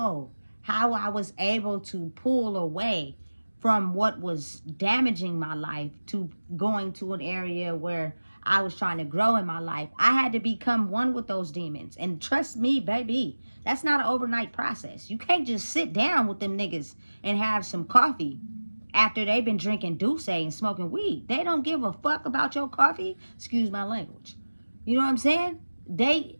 how I was able to pull away from what was damaging my life to going to an area where I was trying to grow in my life. I had to become one with those demons. And trust me, baby, that's not an overnight process. You can't just sit down with them niggas and have some coffee after they've been drinking Douce and smoking weed. They don't give a fuck about your coffee. Excuse my language. You know what I'm saying? They,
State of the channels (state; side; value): inverted; both; correlation -1.00